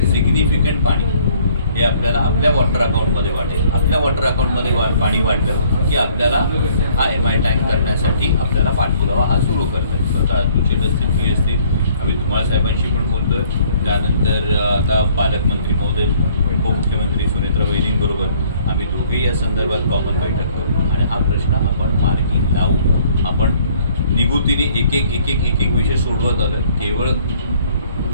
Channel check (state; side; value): inverted; both; correlation -0.60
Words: सिग्निफिकंट पाणी हे आपल्याला आपल्या वॉटर अकाउंटमध्ये वाढेल. आपल्या वॉटर अकाउंटमध्ये पाणी वाढलं की आपल्याला हा MI टँक करण्यासाठी आपल्याला पाठपुरावा हा सुरू करता येईल. स्वतः अतुल शेट असतील, मी असतील, आम्ही धुमाळ साहेबांशी पण बोलतोय. त्यानंतर आता पालकमंत्री महोदय, उपमुख्यमंत्री सुनेत्र वैरींबरोबर आम्ही दोघेही या संदर्भात कॉमन बैठक करू आणि हा प्रश्न आपण मार्गी लावू. आपण निगुतीने एक एक विषय सोडवत आलो. केवळ